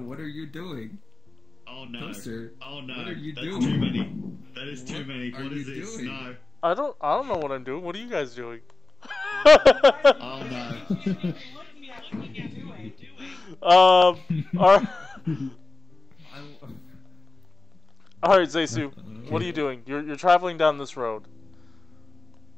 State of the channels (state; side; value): quieter; right; 3.4 dB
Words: are you doing? Oh no. Toaster, Oh no. what are you That's doing? too many. That is too many. What What are is you this? doing? No. I don't know what I'm doing. What are you guys doing? Oh no. Alright, Zeisu, what are you doing? You're traveling down this road.